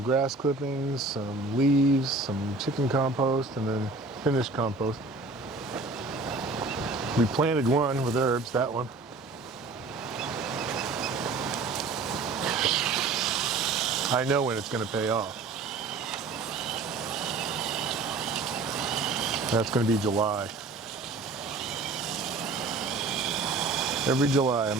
grass clippings, some leaves, some chicken compost, and then finished compost. We planted one with herbs, that one. I know when it's going to pay off. That's going to be July. Every July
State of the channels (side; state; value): left; quieter; 3.7 dB